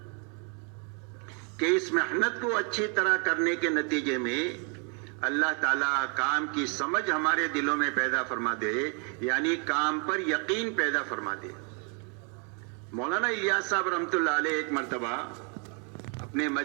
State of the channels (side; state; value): left; quieter; 37.8 dB